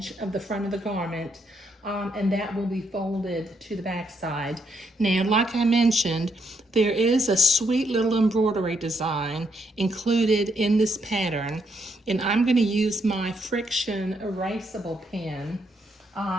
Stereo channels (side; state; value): both; normal; correlation 0.75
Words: of the front of the garment, and that will be folded to the back side. Now, like I mentioned, there is a sweet little embroidery design included in this pattern, and I'm going to use my friction erasable pen